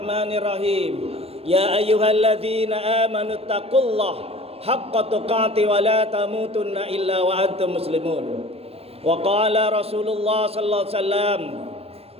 الرحيم. يا أيها الذين آمنوا اتقوا الله حق تقاته ولا تموتن إلا وأنتم مسلمون. وقال رسول الله صلى الله عليه وسلم:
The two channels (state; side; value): late; left; 0.29 ms